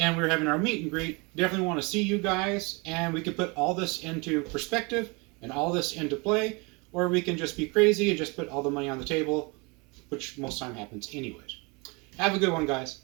we're having our meet and greet. Definitely want to see you guys. And we can put all this into perspective and all this into play. Or we can just be crazy and just put all the money on the table, which most time happens anyways. Have a good one, guys.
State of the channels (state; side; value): quieter; left; 28.9 dB